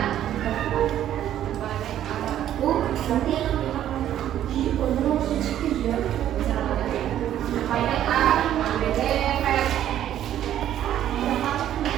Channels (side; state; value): left; quieter; 11.4 dB